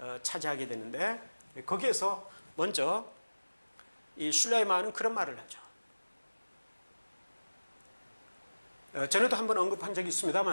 차지하게 되는데, 거기에서 먼저 이 슐라이마는 그런 말을 하죠. 전에도 한번 언급한 적이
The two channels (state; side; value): inverted; both; correlation -1.00